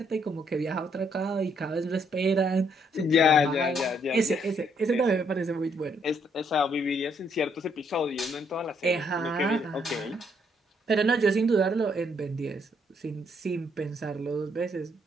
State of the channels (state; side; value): normal; both; correlation 0.71